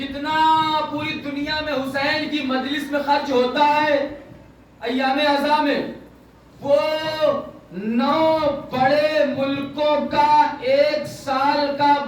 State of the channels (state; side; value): identical; both; correlation 1.00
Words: پوری دنیا میں حسین کی مجلس میں خرچ ہوتا ہے ایام عزا میں، وہ 9 بڑے ملکوں کا 1 سال کا